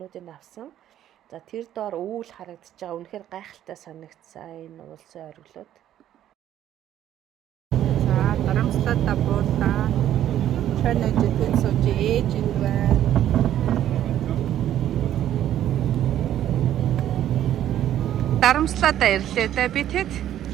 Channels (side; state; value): left; quieter; 11.6 dB